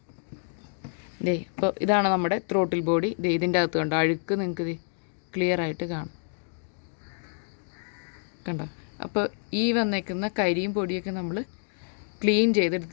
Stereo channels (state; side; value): silent; right; 59 dB below the other